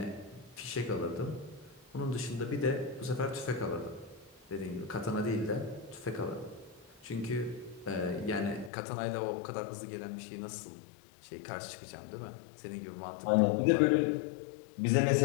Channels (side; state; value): right; drops out; at 8.7 s